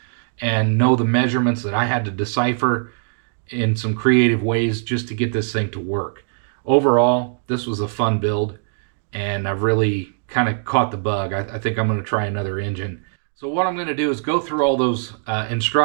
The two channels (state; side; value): silent; left; digital silence